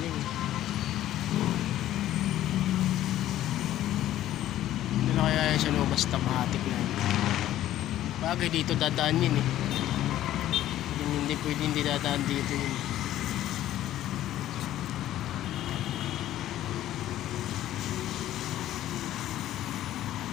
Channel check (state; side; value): quieter; right; 13.2 dB